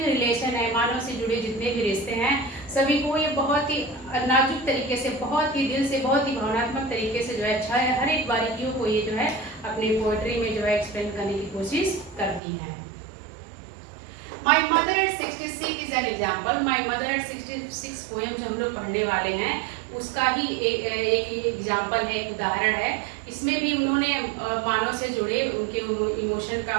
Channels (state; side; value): drops out; left; at 12.4 s